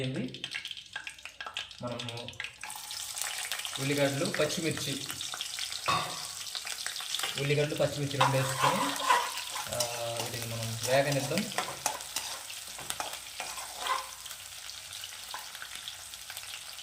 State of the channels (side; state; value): both; identical; correlation 1.00